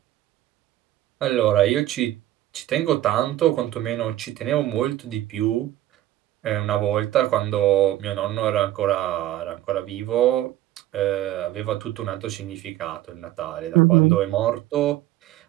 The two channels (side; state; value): left; quieter; 14.1 dB